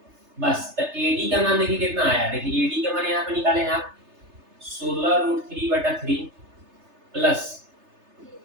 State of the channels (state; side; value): late; left; 3.3 ms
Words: बस। तो AD का मान देखिए कितना आया, देखिए AD का मान यहाँ पे निकाले हैं आप 16√3/3 प्लस